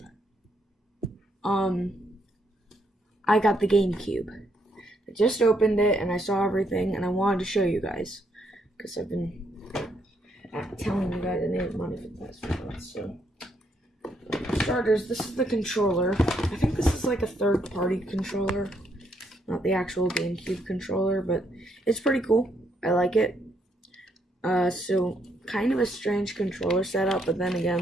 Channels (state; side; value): normal; both; correlation 0.74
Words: I got the Gamecube. I just opened it and I saw everything and I wanted to show you guys because I've been telling you guys I needed money for the past few months, so. For starters, this is the controller. I think this is like a third-party controller, not the actual GameCube controller, but it's pretty cool. I like it. So kind of a strange controller setup, but then again,